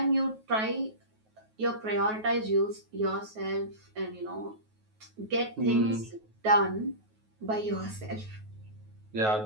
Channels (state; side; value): late; left; 9.3 ms